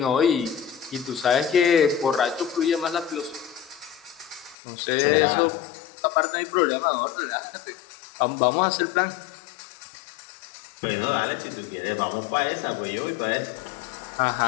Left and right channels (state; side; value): drops out; right; at 4.5 s